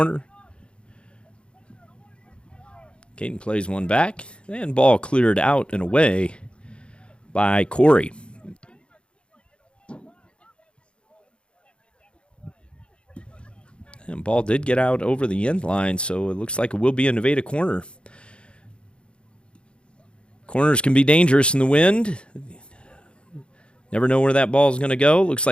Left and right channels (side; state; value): right; late; 0.056 ms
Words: Caden plays one back, and ball cleared out and away by Corey. And ball did get out over the end line, so it looks like it will be a Nevada corner. Corners can be dangerous in the wind. Never know where that ball is going to go. Looks